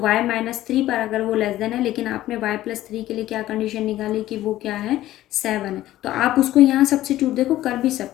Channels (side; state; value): right; quieter; 14.5 dB